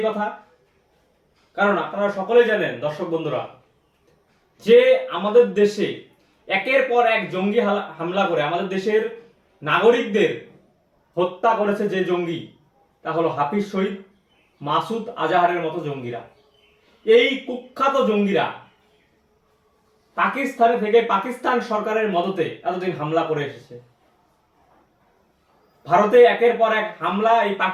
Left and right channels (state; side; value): identical; both; correlation 1.00